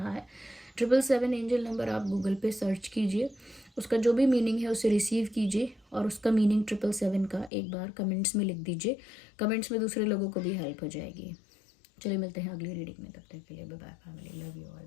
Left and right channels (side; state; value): right; drops out; at 7.5 s